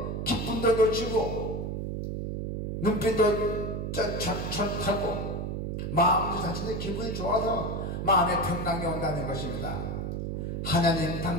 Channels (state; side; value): noise; right; hum, 3 dB below the sound